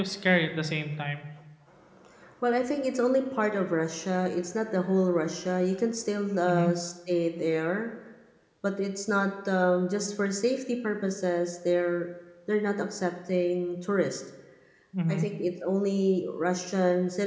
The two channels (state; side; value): identical; both; correlation 1.00